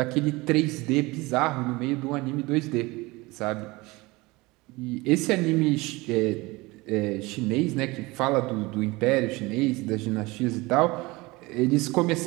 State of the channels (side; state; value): left; quieter; 22.6 dB